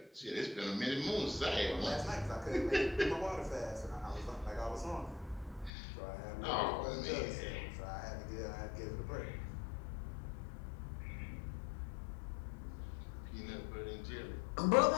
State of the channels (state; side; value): drops out; right; at 5.7 s